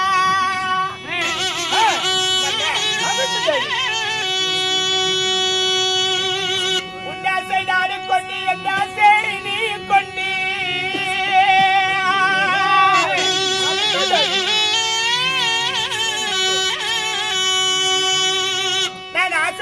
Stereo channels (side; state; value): both; identical; correlation 1.00